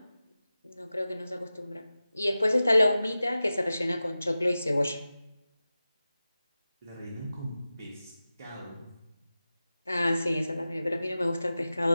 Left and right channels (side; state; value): both; inverted; correlation -0.95